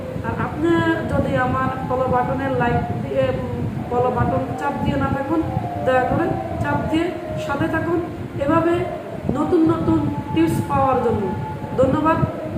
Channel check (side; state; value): both; identical; correlation 1.00